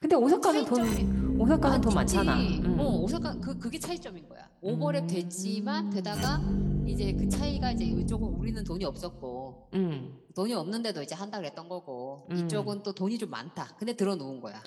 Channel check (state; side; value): identical; both; correlation 1.00